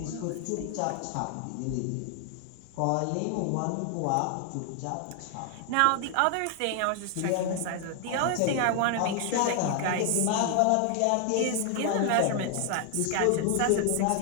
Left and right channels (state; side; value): different; both; correlation 0.00